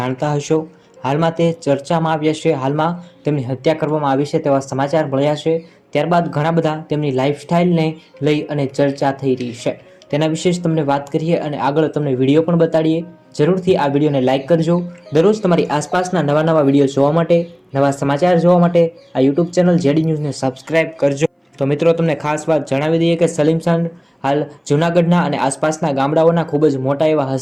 હશો। હાલમાં તે ચર્ચામાં આવ્યા છે। હાલમાં તેમની હત્યા કરવામાં આવી છે તેવા સમાચાર મળ્યા છે। ત્યારબાદ ઘણા બધા તેમની લાઈફસ્ટાઈલને લઈ અને ચર્ચા થઈ રહી છે। તેના વિશે જ તમને વાત કરીએ અને આગળ તમને વિડીયો પણ બતાડીએ। જરૂરથી આ વિડીયોને લાઇક કરજો। દરરોજ તમારી આસપાસના નવા વિડીયો જોવા માટે, નવા સમાચાર જોવા માટે આ યુટ્યુબ ચેનલ જેડી ન્યૂઝને સબસ્ક્રાઇબ કરજો। તો મિત્રો, તમને ખાસ વાત જણાવી દઈએ કે સલીમ સાંઢ હાલ જૂનાગઢના અને આસપાસના ગામડાઓના ખૂબ જ મોટા એવા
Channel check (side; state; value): both; identical; correlation 1.00